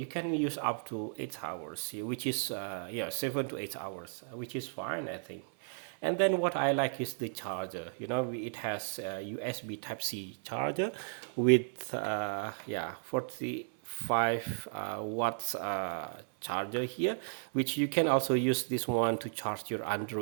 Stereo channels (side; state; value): left; silent; 55 dB below the other